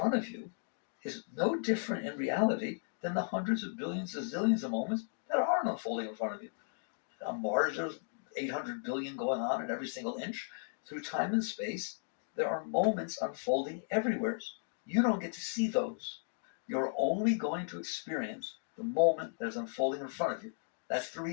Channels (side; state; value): right; silent; digital silence